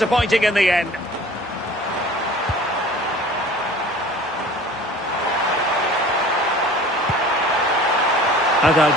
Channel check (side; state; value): both; normal; correlation 0.45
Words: in the end.